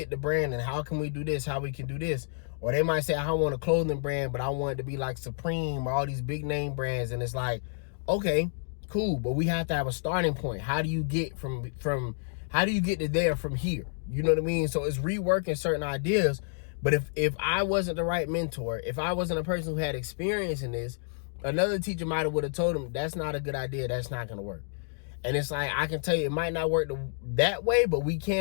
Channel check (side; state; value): right; silent; digital silence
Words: the brand, and how can we do this? How we can do this? Or they might say, I don't want a clothing brand, but I want it to be like Supreme or all these big name brands. And it's like, okay, cool, but we have to have a starting point. How do you get how do you get to there from here? You know what I mean? So it's reworking certain ideas. But if I wasn't the right mentor, if I wasn't a person who had experience in this, another teacher might have would have told him, that's not a good idea. That's not going to work. And it's like, I can tell you, it might not work that way, but we